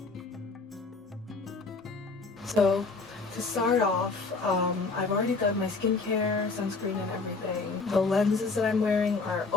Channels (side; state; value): right; quieter; 4.1 dB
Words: So to start off, I've already done my skincare, sunscreen, and everything. The lenses that I'm wearing are